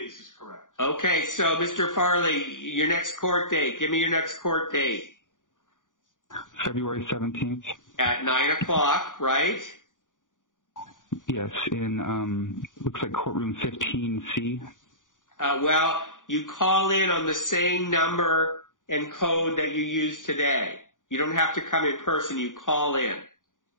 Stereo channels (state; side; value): late; right; 0.88 ms